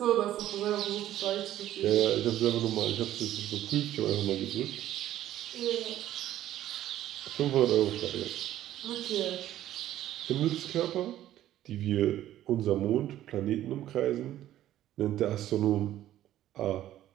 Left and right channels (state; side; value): quieter; left; 12.9 dB